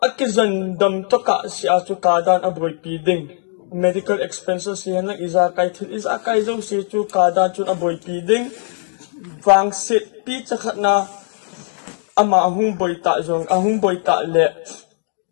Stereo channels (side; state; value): right; silent; 64 dB below the other